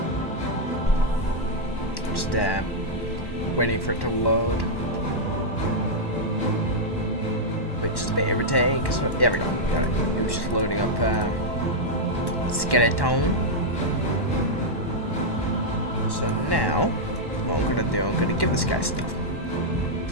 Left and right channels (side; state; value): right; late; 1.1 ms